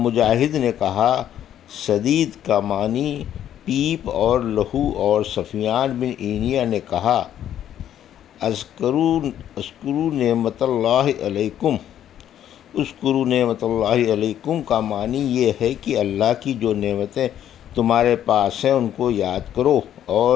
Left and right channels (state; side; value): quieter; right; 10.7 dB